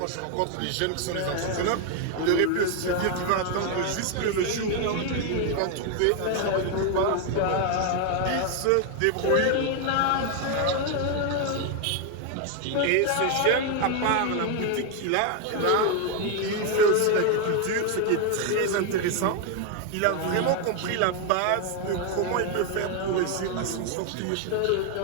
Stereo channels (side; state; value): both; different; correlation 0.01